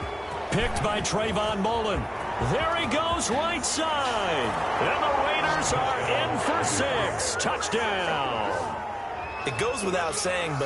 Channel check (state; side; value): identical; both; correlation 1.00